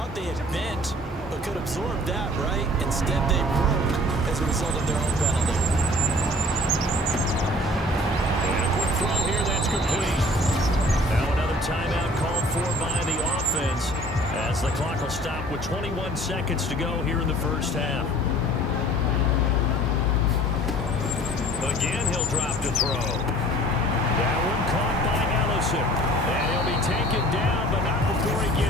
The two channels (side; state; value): both; normal; correlation 0.50